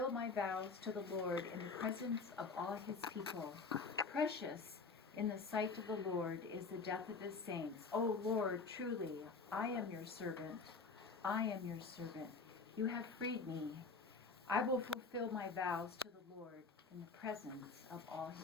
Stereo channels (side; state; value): right; quieter; 4.4 dB